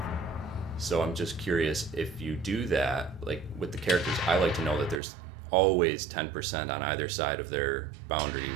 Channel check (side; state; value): left; drops out; at 5.0 s